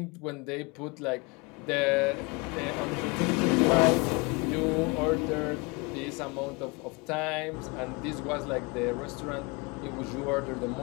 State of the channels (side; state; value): right; quieter; 28.1 dB